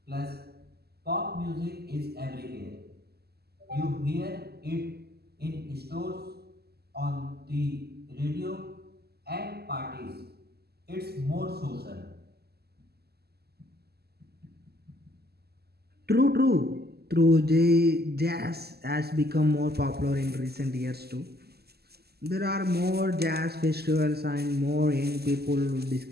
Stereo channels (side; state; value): left; late; 0.46 ms